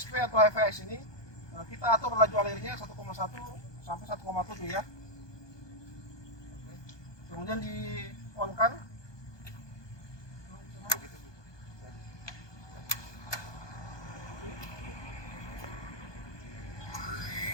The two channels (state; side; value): late; right; 1.2 ms